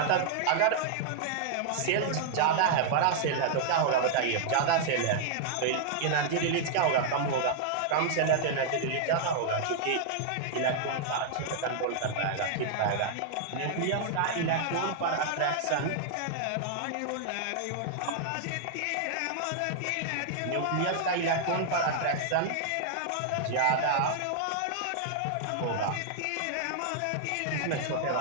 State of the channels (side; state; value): both; different; correlation -0.01